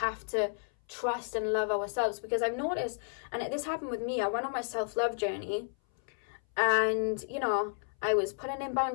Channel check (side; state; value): right; silent; 56 dB below the other